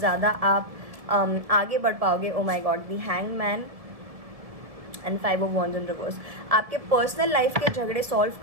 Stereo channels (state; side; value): late; left; 1.7 ms